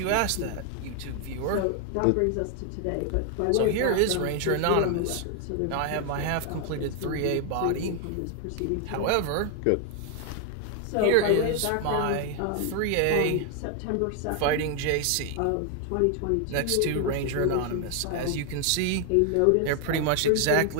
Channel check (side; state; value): both; different; correlation 0.00